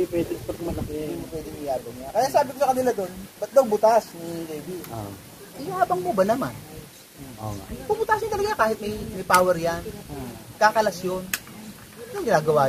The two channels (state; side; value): identical; both; correlation 1.00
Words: pwede pag malaki. Hindi mo pwede iyabang niya. Kaya sabi ko sa kanila doon, ba't daw butas ni Davey? Yung habang mo ba naman? Puputasin talaga kahit may power yan. Kakalas yun. Anong ginagawa